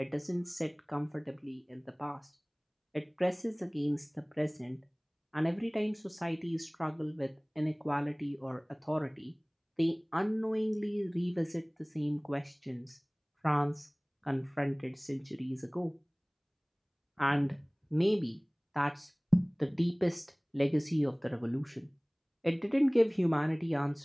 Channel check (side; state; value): both; identical; correlation 1.00